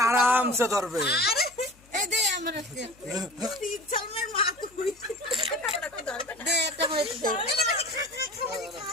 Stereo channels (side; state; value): left; noise; hum, 28 dB below the sound